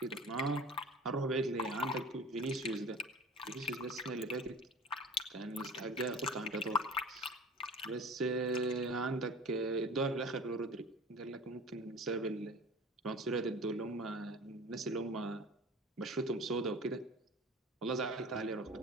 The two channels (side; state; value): both; normal; correlation 0.40